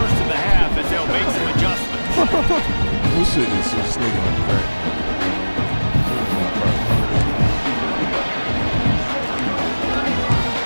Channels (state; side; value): inverted; both; correlation -1.00